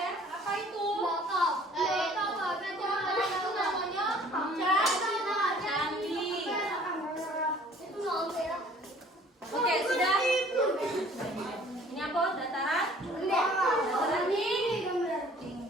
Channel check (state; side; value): normal; both; correlation 0.53